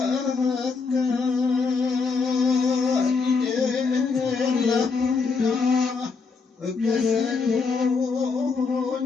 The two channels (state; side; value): quieter; right; 4.7 dB